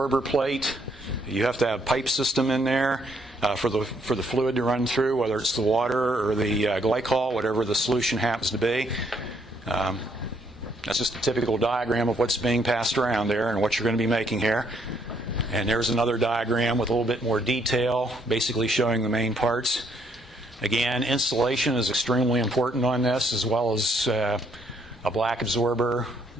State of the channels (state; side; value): normal; both; correlation 0.70